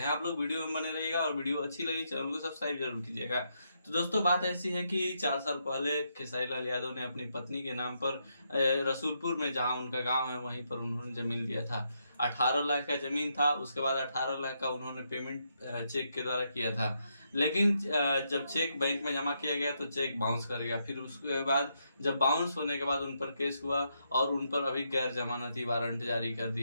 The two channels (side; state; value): both; inverted; correlation -0.79